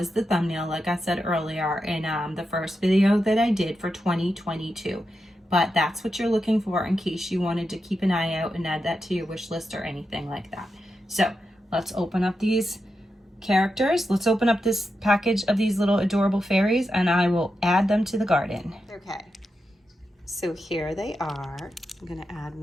the thumbnail, like I said earlier, in the first video that I did for 2022. But that's what you're looking for in case you wanted to keep an eye out and add that to your wish list or anything like that. So let's open up these characters. Let's open up this package of these little adorable fairies, and I will add them to the garden. Okay, so here they are. I'm gonna add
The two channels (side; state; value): both; normal; correlation 0.87